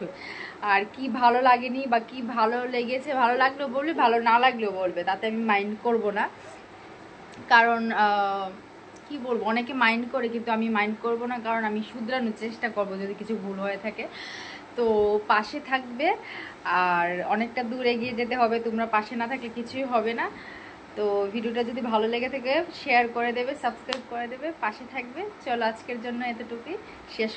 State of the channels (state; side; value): identical; both; correlation 1.00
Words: আর কি ভালো লাগেনি বা কি ভালো লেগেছে, ভালো লাগলেও বলবে, ভালো না লাগলেও বলবে, তাতে আমি মাইন্ড করব না। কারণ কি বলবো, অনেকে মাইন্ড করে কিন্তু আমি মাইন্ড করব না, কারণ আমি শুধরানোর চেষ্টা করব যদি কিছু ভুল হয়ে থাকে। তো পাশে থাকবে, আর অনেকটা দূর এগিয়ে যেতে হবে, তোমরা পাশে না থাকলে কিছুই হবে না। তো ভিডিওটা যদি ভালো লেগে থাকে শেয়ার করে দেবে, সাবস্ক্রাইব করে দেবে, পাশে থাকবে। চলো আজকের জন্য এতটুকুই শেষ